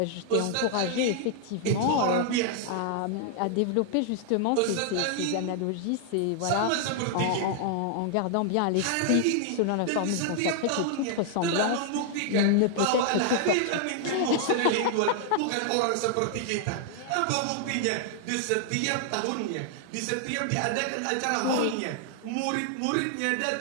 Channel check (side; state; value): both; different; correlation 0.00